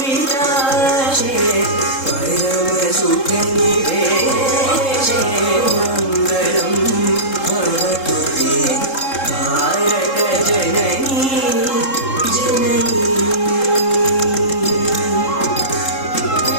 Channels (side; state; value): right; late; 3.7 ms